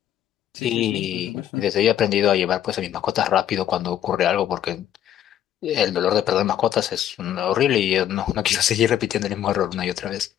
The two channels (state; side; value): quieter; right; 11.0 dB